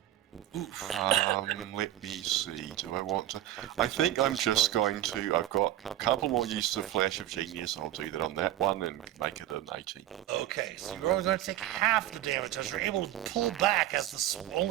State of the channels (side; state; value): left; quieter; 13.3 dB